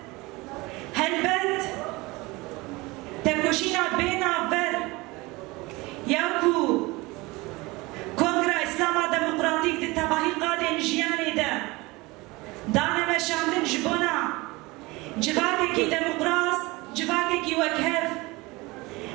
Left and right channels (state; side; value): quieter; left; 22.9 dB